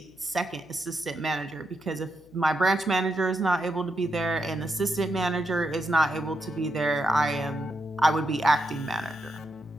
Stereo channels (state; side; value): noise; left; hum, 27 dB below the sound